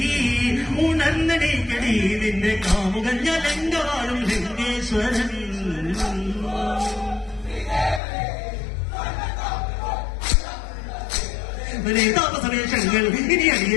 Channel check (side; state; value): right; drops out; at 8.0 s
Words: ഉണർന്നടിക്കടി നിന്റെ കാമുകഞ്ഞ ലങ്കവാഴും ലങ്കേശ്വരൻ താപസവേഷങ്ങൾ ഇനി